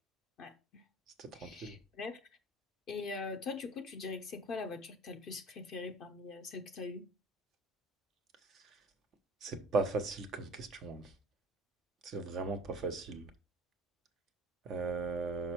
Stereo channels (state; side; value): normal; both; correlation 0.45